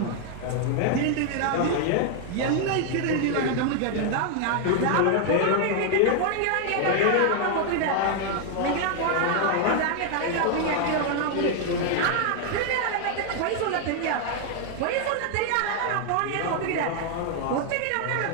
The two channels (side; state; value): both; different; correlation 0.00